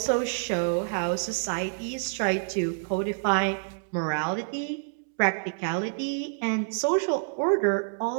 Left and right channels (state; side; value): silent; left; digital silence